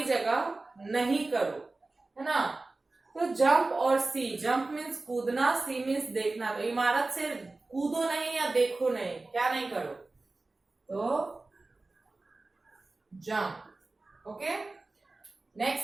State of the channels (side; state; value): left; quieter; 3.3 dB